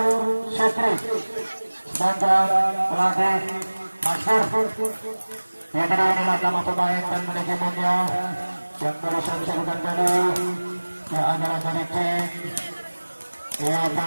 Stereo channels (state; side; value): inverted; both; correlation -1.00